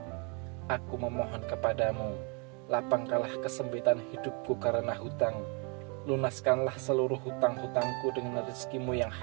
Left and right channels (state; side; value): quieter; left; 33.6 dB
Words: Aku memohon kepadamu, lapangkanlah kesempitan hidupku karena hutang. Lunaskanlah seluruh hutang-hutangku dengan rezekimu yang